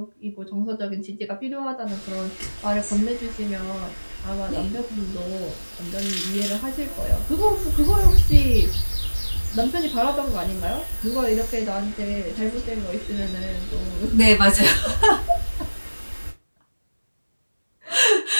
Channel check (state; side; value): inverted; both; correlation -1.00